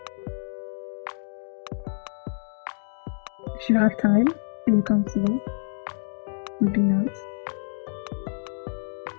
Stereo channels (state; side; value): silent; right; digital silence